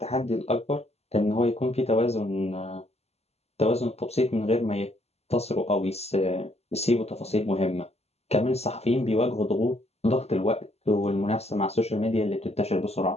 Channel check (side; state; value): right; late; 0.30 ms